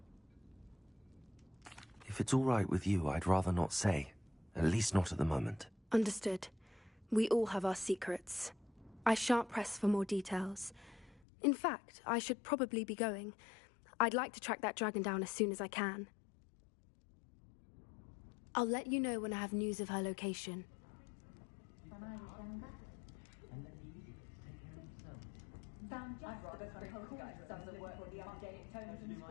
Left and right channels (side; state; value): right; drops out; at 11.2 s